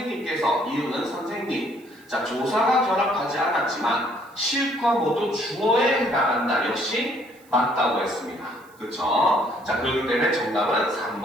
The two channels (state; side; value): noise; right; hiss, 29 dB below the sound